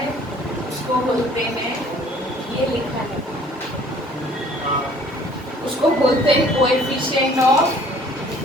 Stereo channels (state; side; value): normal; both; correlation 0.55